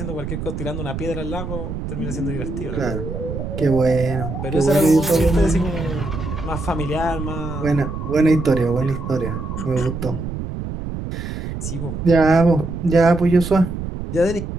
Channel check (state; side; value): noise; right; rumble, 6 dB below the sound